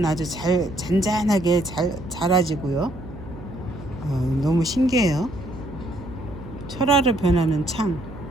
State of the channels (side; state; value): right; noise; hum, 15 dB below the sound